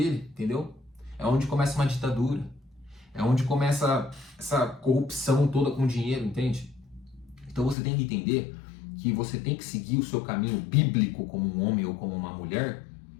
entendeu? É onde começa uma ditadura, é onde começa essa corrupção toda com dinheiro, entende? Então você tem que entender que você tem que seguir o seu caminho bíblico como um homem ou como uma mulher,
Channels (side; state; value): right; drops out; at 7.8 s